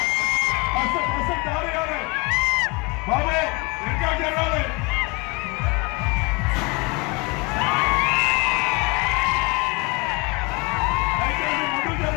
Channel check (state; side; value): quieter; right; 28.2 dB